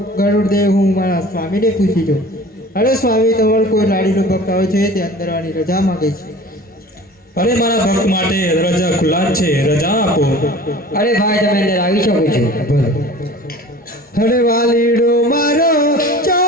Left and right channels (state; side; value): normal; both; correlation 0.42